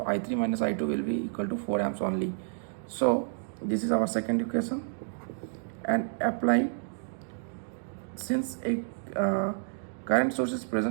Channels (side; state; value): left; silent; digital silence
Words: I3 minus I2 will be equal to 4 amps only. So this is our second equation, and apply, since a current source is